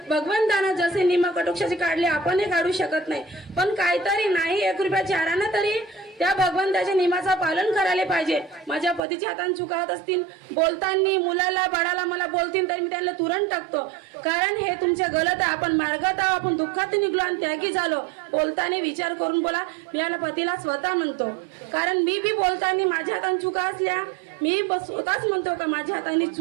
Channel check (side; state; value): left; drops out; at 9.0 s